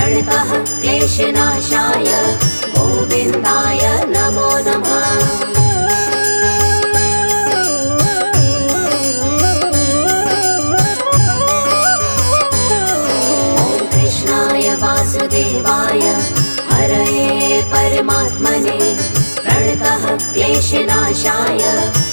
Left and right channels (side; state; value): both; inverted; correlation -1.00